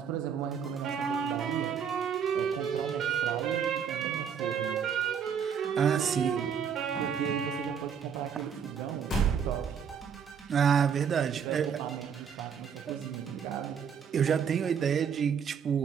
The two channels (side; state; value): left; quieter; 7.4 dB